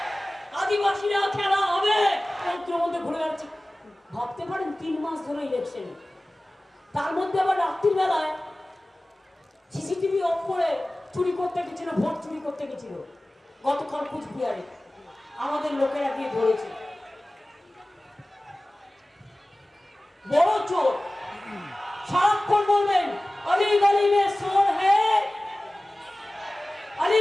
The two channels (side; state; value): both; normal; correlation 0.97